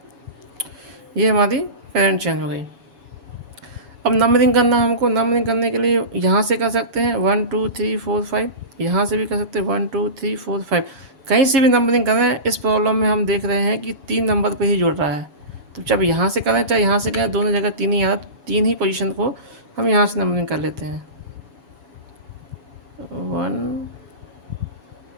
ये हमारी पेरेंट चेन हो गई। अब नंबरिंग करना हमको, नंबरिंग करने के लिए यहाँ से कर सकते हैं 1 2 3 4 5, यहाँ से भी कर सकते हैं 1 2 3 4 5, कहीं से भी नंबरिंग करें। इस प्रॉब्लम में हम देख रहे हैं कि 3 नंबर पे ही जुड़ रहा है, तो चाहे यहाँ से करें चाहे यहाँ से करें, दोनों जगह 3 ही आ रहा, 3 ही पोजीशन को हम यहाँ से नंबरिंग कर लेते हैं। 1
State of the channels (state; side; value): late; left; 7.1 ms